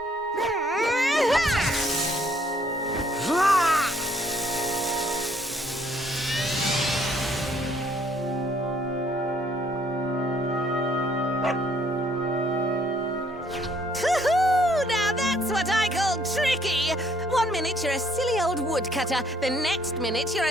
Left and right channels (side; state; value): both; normal; correlation 0.65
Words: Now that's what I call tricky. 1 minute you're a silly old woodcutter, the next minute you're